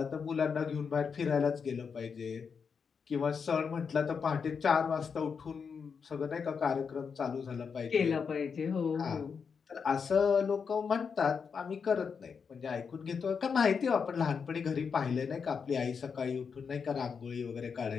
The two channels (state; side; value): quieter; right; 6.0 dB